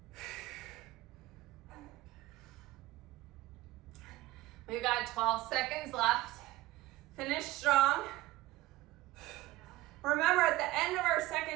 We've got 12 seconds left. Finish strong. Remember, at the end of our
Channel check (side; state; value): left; quieter; 17.5 dB